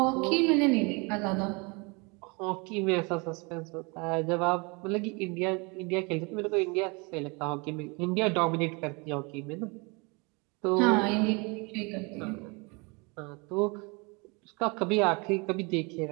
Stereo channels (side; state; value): left; quieter; 29.5 dB